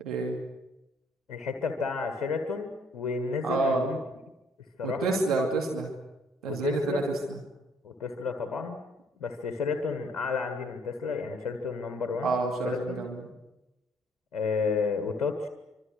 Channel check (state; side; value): normal; both; correlation 0.62